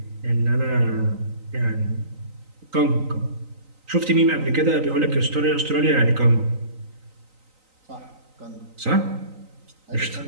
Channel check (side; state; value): left; late; 3.9 ms